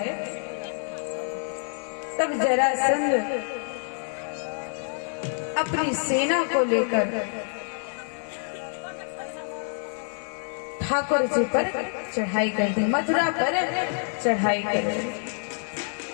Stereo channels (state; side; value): silent; right; 60 dB below the other